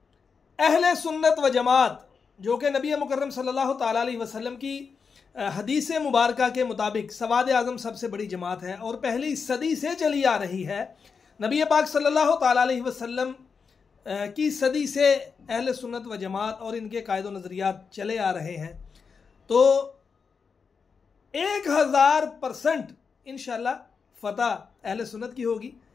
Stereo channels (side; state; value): right; quieter; 5.6 dB